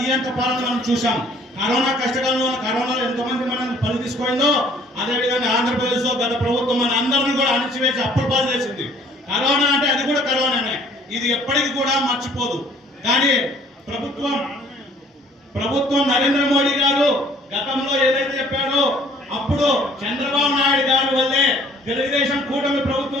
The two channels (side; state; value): both; normal; correlation 0.56